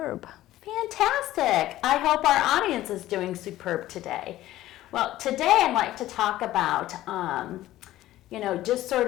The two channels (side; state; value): right; quieter; 14.9 dB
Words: Fantastic. I hope our audience is doing superb today. Well, today I'd like to talk about, just